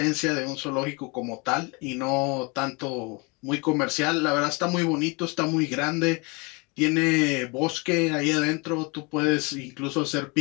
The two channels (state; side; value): quieter; right; 29.1 dB